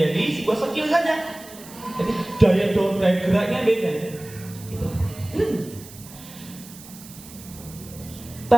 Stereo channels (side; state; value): right; noise; hiss, 18 dB below the sound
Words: sebuah skill saja. Jadi daya geraknya beda. Gitu.